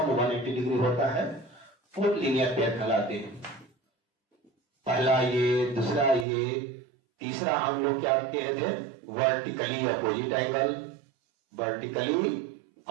180 डिग्री होता है, वो लीनियर पेयर कहलाते हैं। पहला ये, दूसरा ये, तीसरा हम लोग क्या कहे थे, वर्टिकली अपोजिट एंगल।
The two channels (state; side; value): drops out; left; at 6.2 s